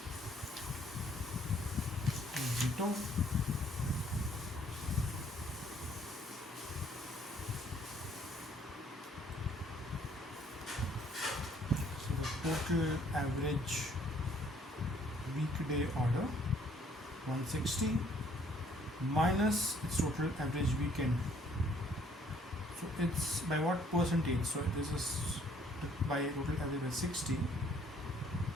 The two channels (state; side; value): normal; both; correlation 0.62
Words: Zito. Total average weekday order 160 minus its total average weekend. So it's by what percentage? So this is by total average by 60.